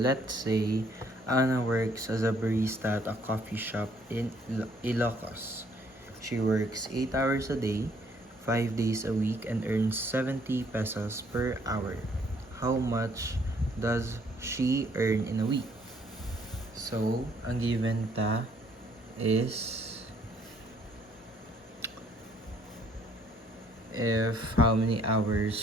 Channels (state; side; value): normal; both; correlation 0.65